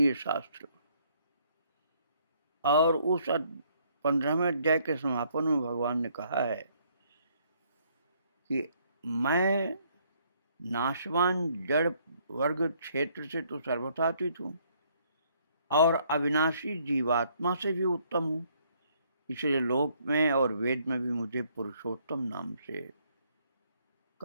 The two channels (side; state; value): both; inverted; correlation -0.67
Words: शास्त्र। और उस 15वें अध्याय के समापन में भगवान ने कहा है कि मैं नाशवान जड़ वर्ग क्षेत्र से तो सर्वथातीत हूँ और अविनाशी जीवात्मा से भी उत्तम हूँ, इसलिए लोक में और वेद में भी मुझे पुरुषोत्तम नाम से